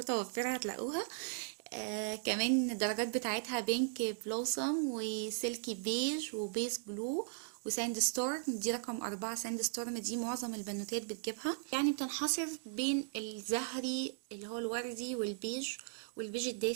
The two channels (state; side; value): silent; left; digital silence